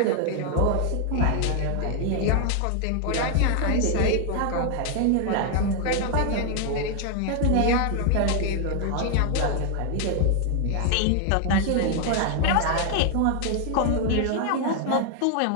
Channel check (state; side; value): different; both; correlation 0.00